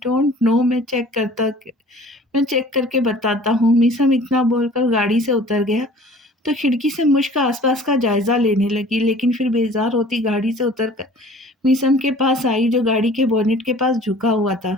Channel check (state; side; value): normal; both; correlation 0.48